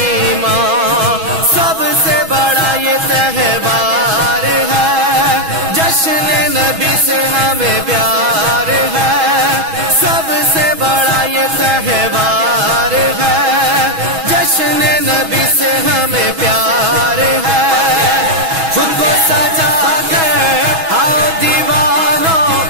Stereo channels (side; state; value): left; late; 6.2 ms